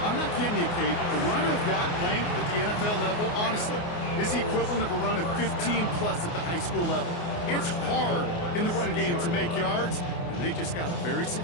I'm not kidding you, Kate. A run of that length at the NFL level, honestly, is the equivalent of a run of 15-plus at the high school level. It's hard in the run game to make yards, and they just got a very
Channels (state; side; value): late; right; 29 ms